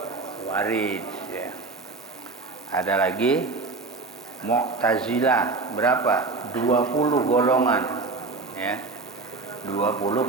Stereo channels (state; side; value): quieter; left; 3.8 dB